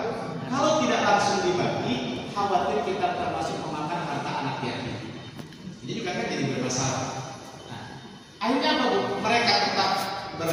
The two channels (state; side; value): identical; both; correlation 1.00